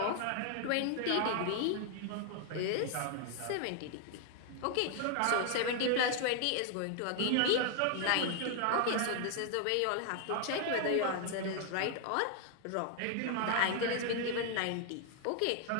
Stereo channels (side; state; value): both; different; correlation 0.00